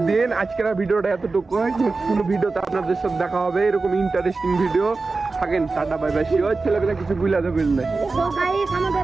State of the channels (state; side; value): quieter; left; 3.9 dB